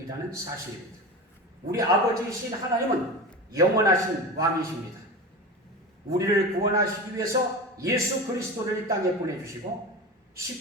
사실입니다. 우리 아버지이신 하나님은 영원하신 왕이십니다. 우리를 구원하시기 위해서 예수 그리스도를 이 땅에 보내주시고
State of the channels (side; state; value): both; normal; correlation 0.27